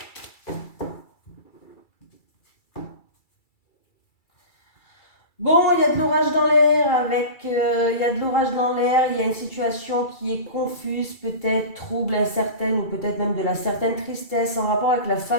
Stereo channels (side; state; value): right; late; 2.3 ms